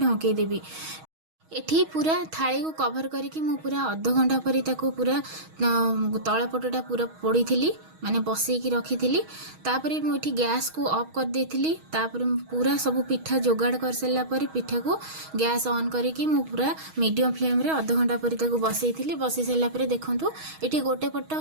देबी। एठी पूरा थाली को कवर करके मु पूरा अध घंटा पर पूरा तलपटटा पूरा पोड़ी थी माने बसईकी रखी थी। तापर मुझे गैस को ऑफ कर देती। तापर पूरा सब पिठा जोगाड़ कर सारा पर पिठा को गैस ऑन करके मु पूरा मीडियम फ्लेम रे अध घंटा पर बसई थी। बसई सारा पर देखंतु एठी गोटे पट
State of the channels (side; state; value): left; late; 6.3 ms